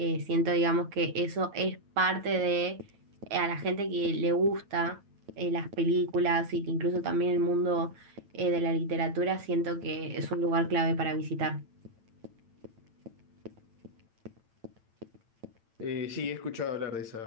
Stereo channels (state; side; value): late; left; 8.9 ms